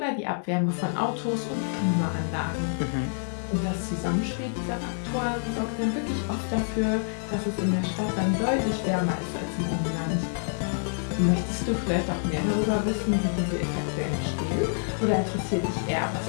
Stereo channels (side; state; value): right; silent; digital silence